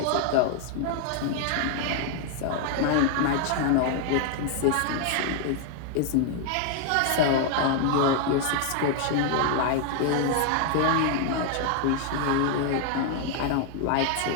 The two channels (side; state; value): both; different; correlation 0.00